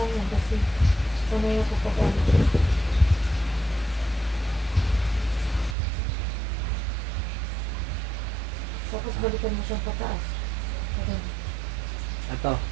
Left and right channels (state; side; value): drops out; left; at 5.8 s